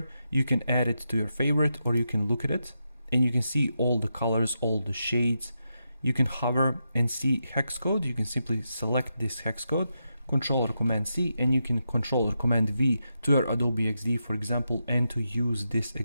You can add it to your favorite, or you can look at it and you can see all the colors, all the shades. You can hover and see hex code. You can simply select this hex code, Control or Command C, and you can Control or Command V to your Adobe XD, for example, and to use this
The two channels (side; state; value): both; inverted; correlation -0.86